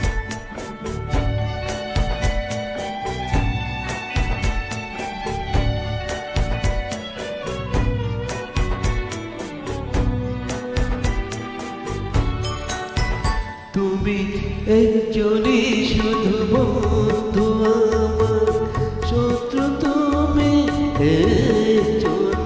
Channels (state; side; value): identical; both; correlation 1.00